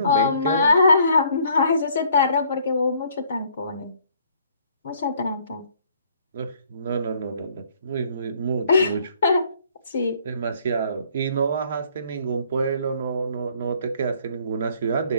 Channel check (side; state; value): both; inverted; correlation -0.62